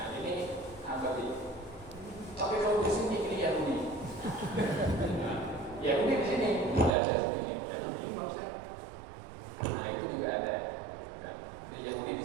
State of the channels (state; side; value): drops out; left; at 7.0 s